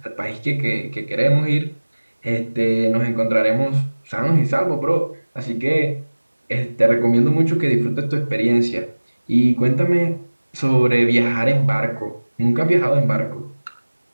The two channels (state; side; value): inverted; both; correlation -1.00